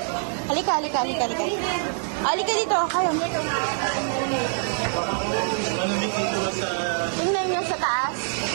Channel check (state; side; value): silent; left; digital silence